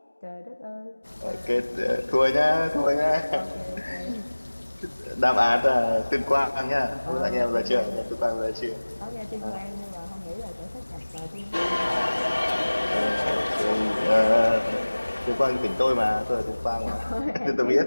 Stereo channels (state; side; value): inverted; both; correlation -1.00